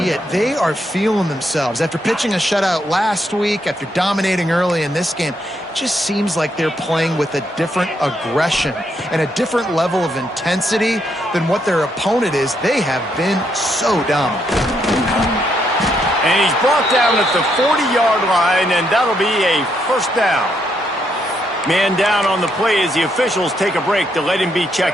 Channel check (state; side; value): normal; both; correlation 0.76